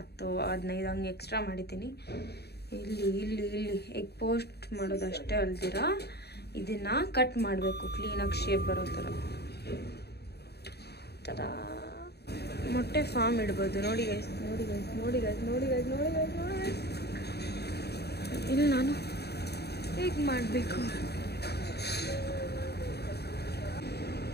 ಹಂಗೆ ಎಕ್ಸ್ಟ್ರಾ ಮಾಡಿದ್ದೀನಿ. ಇಲ್ಲಿ ಎಗ್ ಪೋಸ್ಟ್ ಮಾಡೋದಷ್ಟೇ ಅಲ್ದಿರ ಇದನ್ನು ಕಟ್ ಮಾಡಬೇಕು ಕ್ಲೀನಾಗಿ ಶೇಪ್ ಬರೋ ಥರ. ಮೊಟ್ಟೆ ಫಾರ್ಮ್ ಇಡ್ಬೋದು. ನೋಡಿ ಗೈಸ್. ಇಲ್ಲಿ ನಾನು ಹೇಗೆ ಮಾಡಬೇಕು.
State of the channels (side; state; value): right; late; 0.48 ms